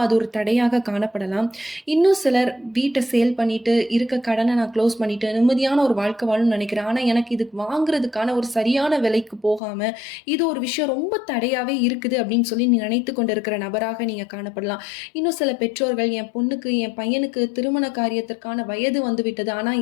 அது ஒரு தடையாக காணப்படலாம். இன்னும் சிலர் வீட்டை சேல் பண்ணிட்டு, இருக்க கடனை நான் க்ளோஸ் பண்ணிட்டு நிம்மதியான ஒரு வாழ்க்கை வாழணும்னு நினைக்கிறேன். ஆனா எனக்கு இது வாங்குறதுக்கான ஒரு சரியான விலைக்கு போகாம, இது ஒரு விஷயம் ரொம்ப தடையாவே இருக்குது அப்படின்னு சொல்லி நீ நினைத்து கொண்டிருக்கிற நபராக நீங்க காணப்படலாம். இன்னும் சில பெற்றோர்கள், என் பொண்ணுக்கு, என் பையனுக்கு திருமண காரியத்திற்கான வயது வந்து விட்டது. ஆனா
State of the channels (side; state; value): right; drops out; at 9.6 s